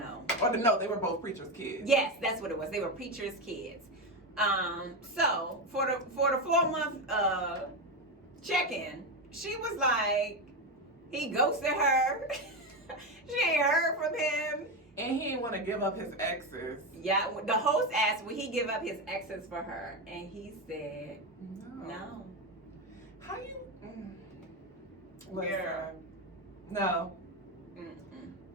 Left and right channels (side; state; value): both; normal; correlation 0.13